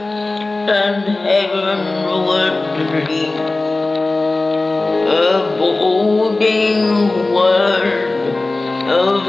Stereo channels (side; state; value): right; quieter; 3.2 dB